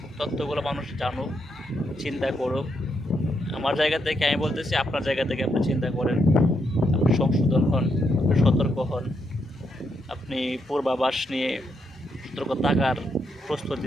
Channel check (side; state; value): both; normal; correlation 0.79